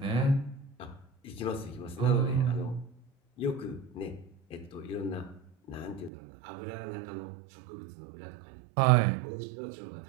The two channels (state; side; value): drops out; left; at 6.1 s